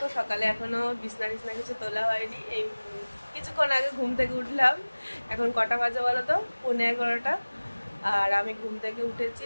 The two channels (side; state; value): both; inverted; correlation -1.00